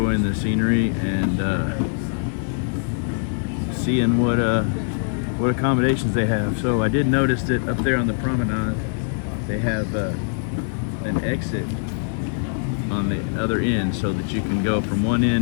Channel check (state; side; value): silent; right; 64 dB below the other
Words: the scenery and seeing what accommodations they have. So I did notice that up there on the promenade they have an exit on the other end, so that you can go from one